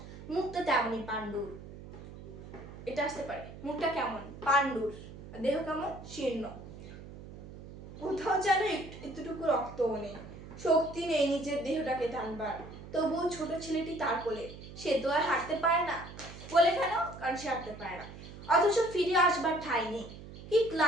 মুখটা তেমনই পাণ্ডুর। এটা আসতে পারে, মুখটা কেমন পাণ্ডুর, দেহ কেমন শীর্ণ, কোথাও যেন একটুটুকু রক্তও নেই, শক্তি নেই নিজের দেহটাকে টানবার। তবুও ছোট ছেলেটি তার কোলে, সে তো আর হাঁটতে পারে না। কোলে কেন? কারণ সে হাঁটতে পারে না, অথচ ফিরে আসবার ঠাঁই নেই। কি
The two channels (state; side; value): noise; right; hum, 14 dB below the sound